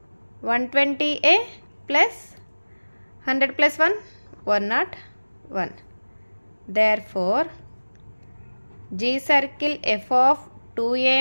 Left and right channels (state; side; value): inverted; both; correlation -1.00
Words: 120a plus 100 plus 1 101. 1. Therefore, G circle f of